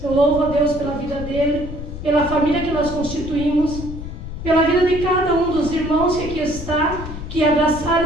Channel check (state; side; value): noise; left; rumble, 9 dB below the sound